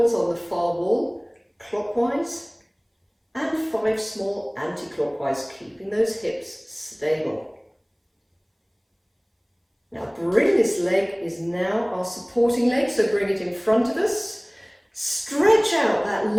on the far wall, clockwise, and 5 small anti-clockwise, keeping those hips stable. Now bring this leg, is now our supporting leg, so bring it in front of us. Stretch out that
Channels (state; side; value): identical; both; correlation 1.00